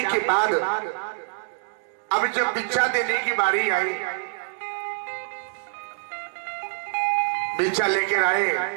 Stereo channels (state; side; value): silent; left; digital silence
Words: के बाद अब जब भिक्षा देने की बारी आई, भिक्षा लेकर आए,